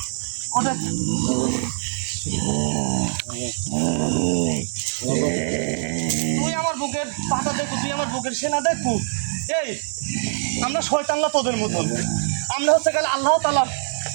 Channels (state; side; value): silent; left; 63 dB below the other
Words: ওঠে। তুই আমার বুকের পাতা দেখু, তুই আমার বুকের সেনা দেখু। এই আমরা শয়তানরা তোদের মতন, আমরা হচ্ছে গেলে আল্লাহ তাআলা